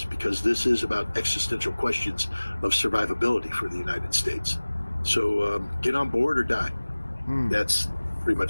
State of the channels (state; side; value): inverted; both; correlation -1.00